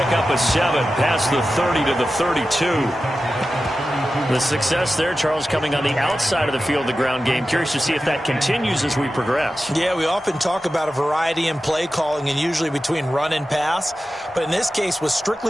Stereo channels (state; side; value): normal; both; correlation 0.93